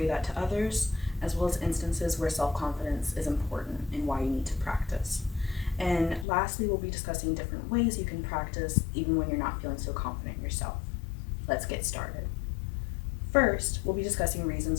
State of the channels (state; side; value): drops out; right; at 6.2 s